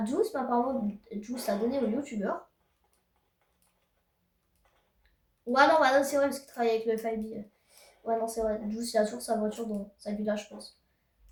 Juice, mais apparemment, Juice l'a donné au youtubeur. Ouais, non, bah, non c'est vrai, parce qu'il travaille avec le FIB. Ouais, non, c'est vrai. Juice, il a toujours sa voiture dans sa villa, je pense.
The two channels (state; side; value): identical; both; correlation 1.00